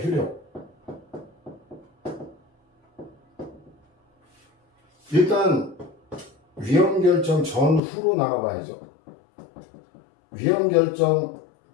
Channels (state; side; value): drops out; right; at 7.8 s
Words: 효력. 일단 위헌 결정 전후로 나가봐야죠. 위헌 결정